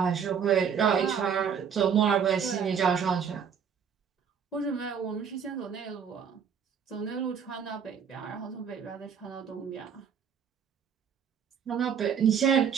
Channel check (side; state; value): left; quieter; 7.3 dB